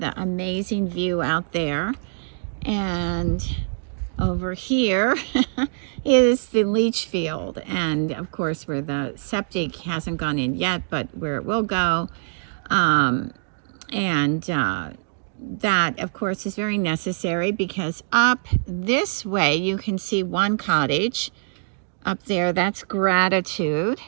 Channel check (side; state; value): left; silent; digital silence